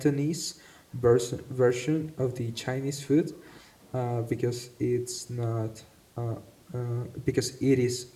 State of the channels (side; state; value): both; identical; correlation 1.00